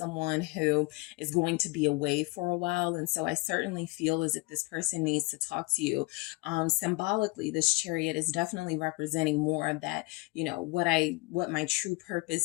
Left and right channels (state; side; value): quieter; right; 24.3 dB